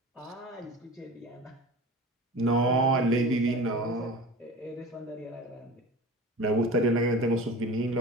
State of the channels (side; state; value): both; normal; correlation 0.35